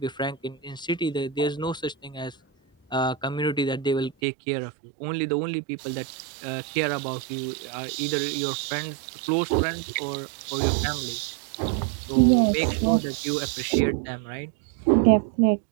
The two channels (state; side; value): drops out; left; at 4.2 s